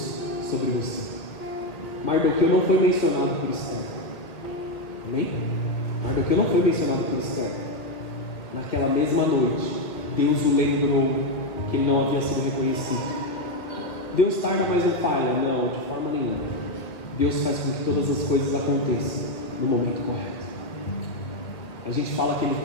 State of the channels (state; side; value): late; right; 2.1 ms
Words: sobre você. Mardoqueu não foi mencionado por Esther. Amém? Mardoqueu não foi mencionado por Esther. Naquela mesma noite, Deus o lembrou que ele não havia sido reconhecido. Deus tarda, mas não falha. Não, de forma nenhuma. Deus faz com que todas as coisas aconteçam no momento correto. A gente fala que Ele